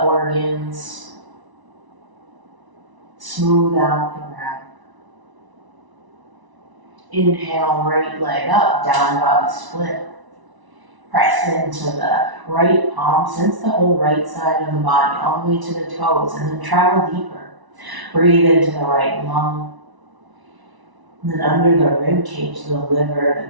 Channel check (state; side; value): late; left; 1.0 ms